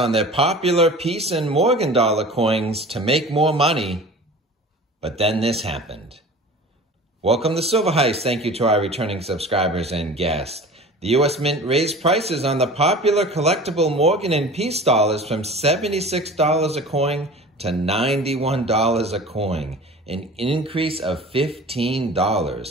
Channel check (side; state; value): both; normal; correlation 0.39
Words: their popular Peace and Morgan dollar coins to make more money. But then this happened. Welcome to Silver Heist. Thank you to our returning subscribers and guests. The U.S. Mint raised prices on the popular collectible Morgan and Peace dollars from $76 a coin to $91 a coin, an increase of